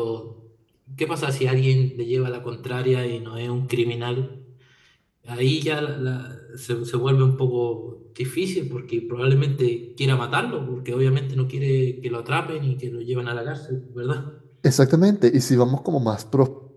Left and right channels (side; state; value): both; identical; correlation 1.00